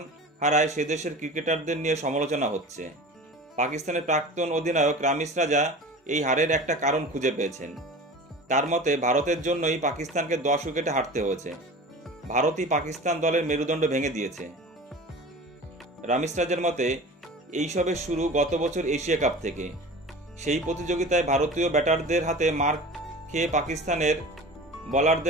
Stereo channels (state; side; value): normal; both; correlation 0.37